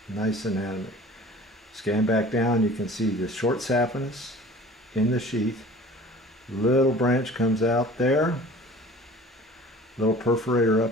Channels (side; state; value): both; normal; correlation 0.45